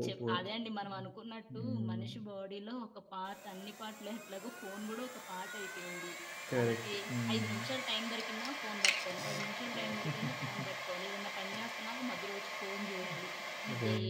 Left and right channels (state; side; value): identical; both; correlation 1.00